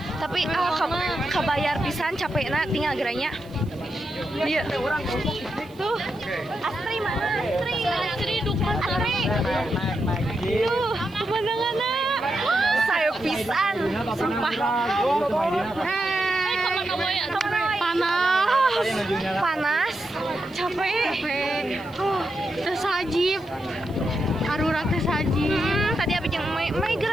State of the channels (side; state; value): right; noise; hiss, 28 dB below the sound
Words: Tapi kabayar pisan capekna tinggal geranya. Iya. Tuh. Astri mana? Astri dukan Astri. Tuh, pemandanganna. Saya pisan. Sumpah. Panas. Capek. Tersajib. Arurang tersajib. Tadi abis yang Mei